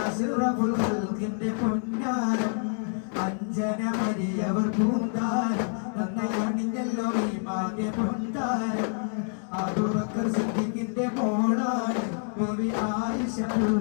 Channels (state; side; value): silent; right; 60 dB below the other